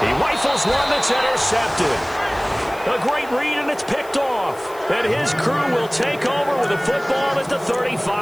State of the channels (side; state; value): left; noise; hiss, 22 dB below the sound